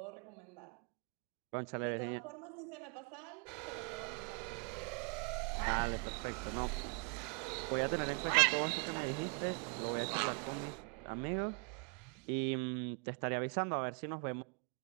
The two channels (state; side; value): quieter; left; 35.9 dB